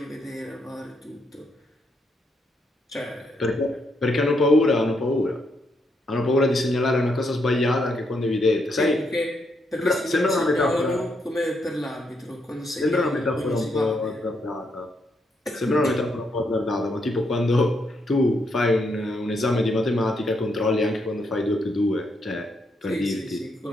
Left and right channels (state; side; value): normal; both; correlation 0.78